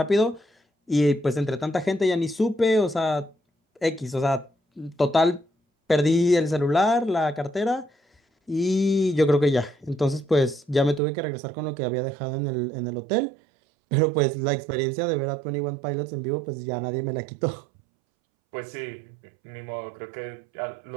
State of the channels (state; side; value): drops out; left; at 11.0 s